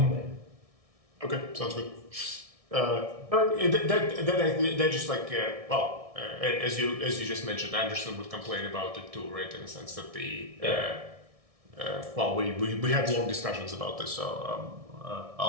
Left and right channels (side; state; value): left; late; 1.6 ms